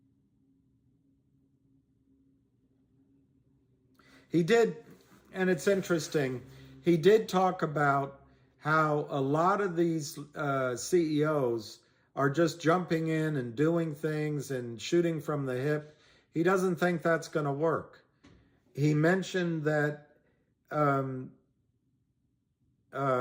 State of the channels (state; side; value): identical; both; correlation 1.00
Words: He did, and it's interesting, he did talk about how a lot of these CEOs are just jumping in and doing things and shooting from the hip. He doesn't think that's going to work. He mentioned that